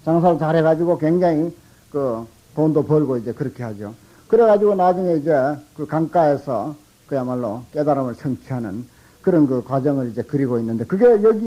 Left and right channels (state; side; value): identical; both; correlation 1.00